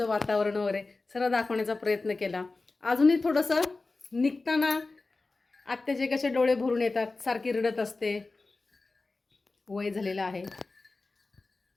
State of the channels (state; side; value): quieter; right; 3.5 dB